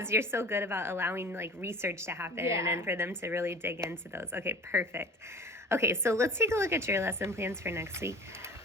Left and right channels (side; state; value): both; normal; correlation 0.42